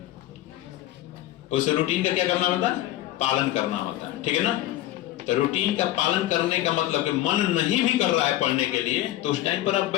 उस रूटीन का क्या करना होता है, पालन करना होता है, ठीक है ना। तो रूटीन का पालन करने का मतलब कि मन नहीं भी कर रहा है पढ़ने के लिए, तो उस टाइम पर आप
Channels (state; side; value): quieter; right; 14.3 dB